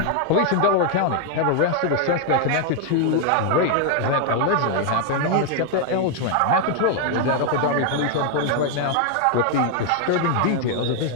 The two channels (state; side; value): different; both; correlation 0.00